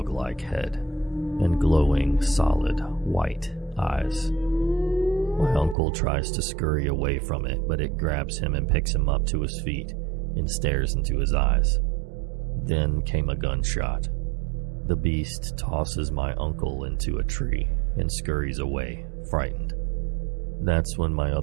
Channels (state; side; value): drops out; left; at 5.8 s